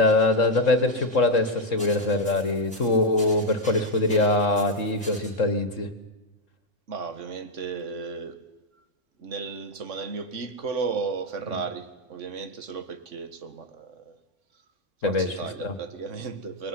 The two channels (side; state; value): both; normal; correlation 0.02